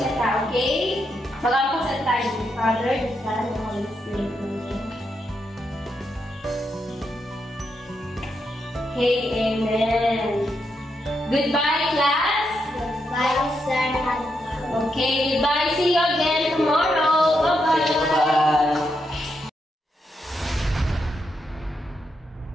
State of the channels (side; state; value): both; normal; correlation 0.82